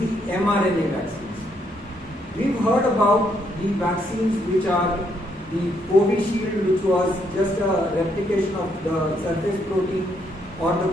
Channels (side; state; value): both; normal; correlation 0.73